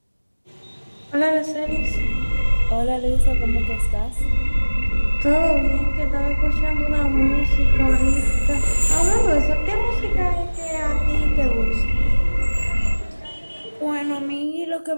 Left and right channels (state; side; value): inverted; both; correlation -1.00